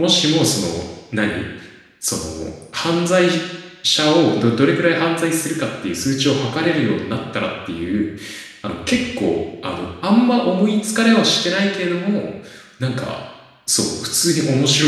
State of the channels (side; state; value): both; identical; correlation 1.00